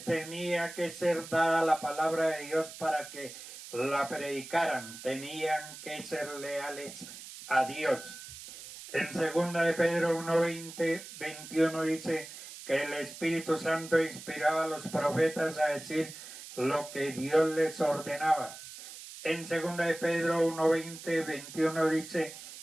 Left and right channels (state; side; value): noise; right; hiss, 13 dB below the sound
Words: tenía que ser dada la palabra de Dios para que la predicaran. Tenían que ser leales a Dios. En 2 de Pedro 1:20-21 dice que el Espíritu Santo inspiraba a los profetas a decir lo que Dios les ordenaba. En 2 de Pedro 1:20-21 dice: